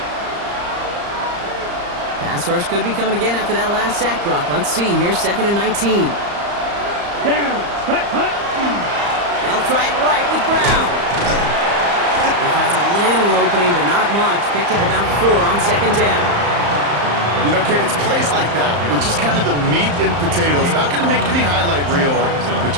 Pass rush could be coming again after that last sack, Brock. Let's see. Here's 2nd and 19. Down. Hut. They'll try it right with Brown. He finds a little opening, but not much. Picked up about 4 on 2nd down. You know, Kate, it's plays like that. It's just kind of the meat and potatoes. Not going to make any highlight reel, but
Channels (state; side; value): late; left; 35 ms